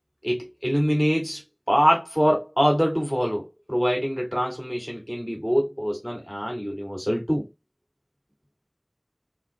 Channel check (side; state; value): both; identical; correlation 1.00